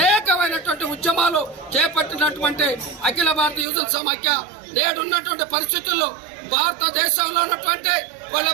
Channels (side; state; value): left; drops out; at 3.7 s